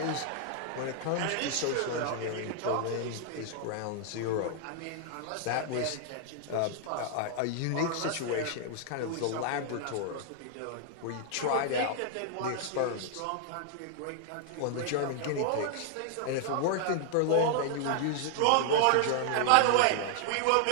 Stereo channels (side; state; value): both; different; correlation -0.01